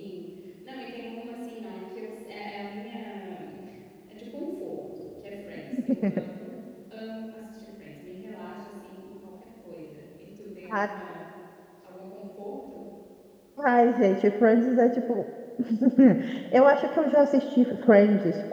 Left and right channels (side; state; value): both; identical; correlation 1.00